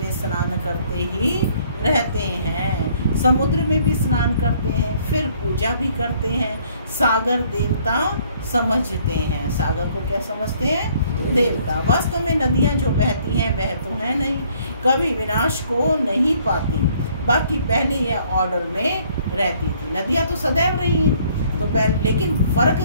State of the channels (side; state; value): both; inverted; correlation -0.62